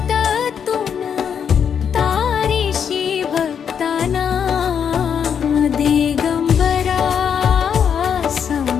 तारीशी भक्तांना दिगंबरा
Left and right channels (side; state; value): right; quieter; 7.6 dB